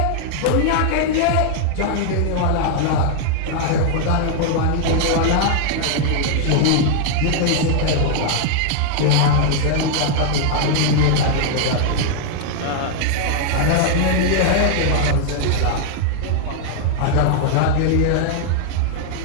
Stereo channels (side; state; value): both; different; correlation 0.00